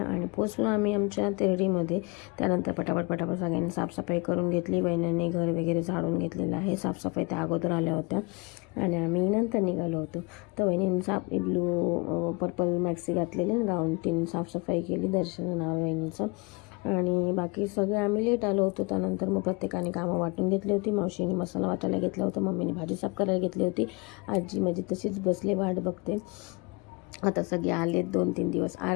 आणि पोचलो आम्ही आमच्या तेरडीमध्ये. त्यानंतर पटापट सगळ्यांनी साफसफाई करून घेतली. बहिणींनी घर वगैरे झाडून घेतलेलं आहे. साफसफाई त्या अगोदर आल्या होत्या आणि आम्ही नंतर निघालो होतो. तर बहिणींनी ब्लू पर्पल मॅक्सी घातलेली आणि गाऊन तिने साफसफाई केली. दर्शन नाव बहिणीचं. आणि बाकी सगळे आम्ही लेट आलो होतो. त्यानंतर मग प्रत्येकाने कामं वाटून घेतली होती. मावशीने मसाला वाटायला घेतला होता, मम्मीने भाजी साफ करायला घेतली होती. आजी माझी तशीच बसले वाट बघते. आता सगळे आलेत. 2-3 दिवस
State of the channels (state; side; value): quieter; right; 28.6 dB